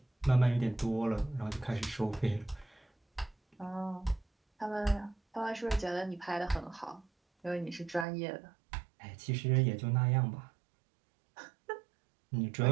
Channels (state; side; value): drops out; left; at 8.1 s